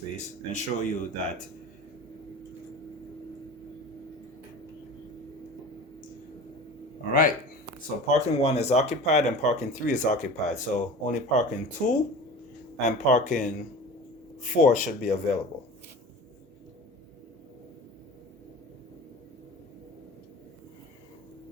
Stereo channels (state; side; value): normal; both; correlation 0.37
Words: and show you that. All right. So parking 1 is occupied and parking 3 is occupied. So only parking 2 and parking 4 should be available.